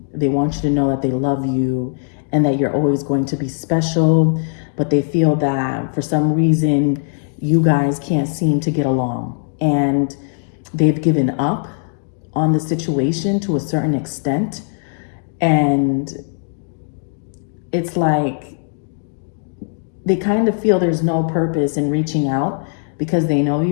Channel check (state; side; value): silent; right; digital silence